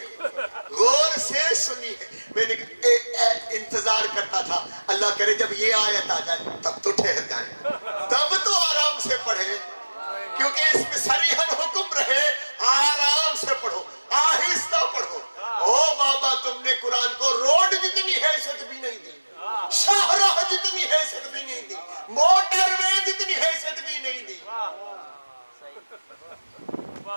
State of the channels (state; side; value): inverted; both; correlation -1.00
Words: غور سے سنی ہے. میں نے انتظار کرتا تھا اللہ کرے جب یہ آیت آ جائے تب تو ٹھہر جائیں, تب تو آرام سے پڑھیں, کیونکہ اس میں صریحاً حکم رہے آرام سے پڑھو, آہستہ پڑھو. او بابا, تم نے قرآن کو روڈ جتنی حیثیت بھی نہیں دی, شاہراہ جتنی حیثیت بھی نہیں دی, موٹر وے جتنی حیثیت بھی نہیں دی,